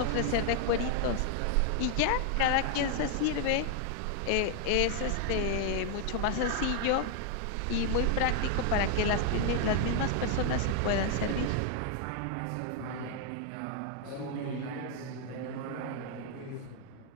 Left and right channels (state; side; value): different; both; correlation 0.00